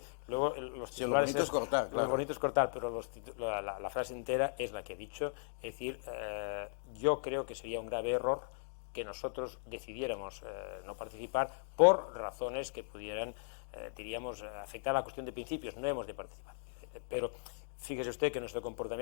luego los titulares... Sí, lo bonito es cortar, claro. Lo bonito es cortar, pero la frase entera es la que he dicho. Es decir, yo creo que sería un grave error que nosotros decidiéramos no participar por razones que pudieran, diríamos, afectar a la cuestión de principios. No hemos de participar. Pero fíjese usted que nuestro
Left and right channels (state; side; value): silent; right; digital silence